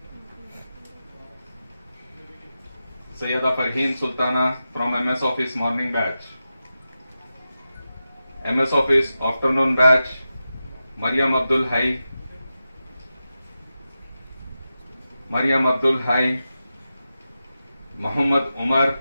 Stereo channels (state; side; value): inverted; both; correlation -0.91